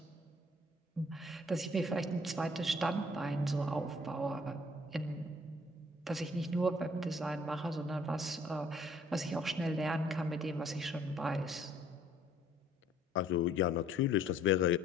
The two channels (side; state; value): both; normal; correlation 0.59